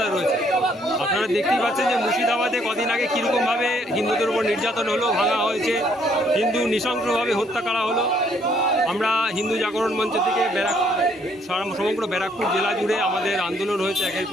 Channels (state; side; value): normal; both; correlation 0.67